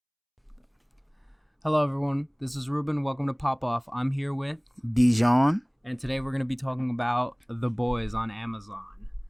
Hello, everyone. This is Ruben. Welcome to Pop Off. I'm here with Dijon. And today we're going to be talking about The Boys on Amazon.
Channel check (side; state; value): both; identical; correlation 1.00